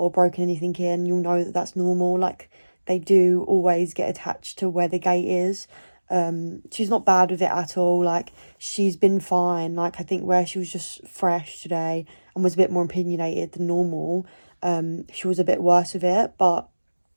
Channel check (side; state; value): both; inverted; correlation -1.00